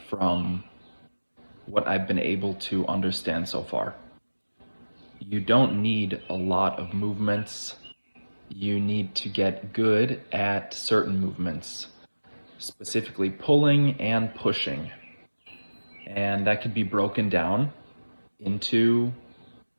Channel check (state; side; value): inverted; both; correlation -1.00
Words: from what I've been able to understand so far. You don't need a lot of movements. You need to get good at certain movements, specifically pulling and pushing. And that could be broken down into